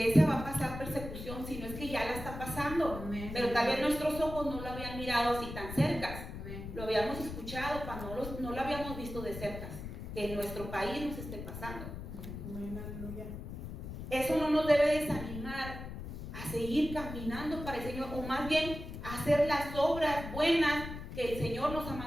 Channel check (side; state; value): left; noise; rumble, 9 dB below the sound